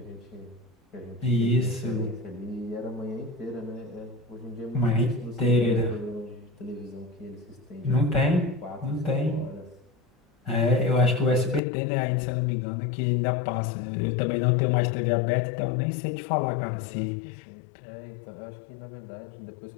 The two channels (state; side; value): drops out; right; at 11.6 s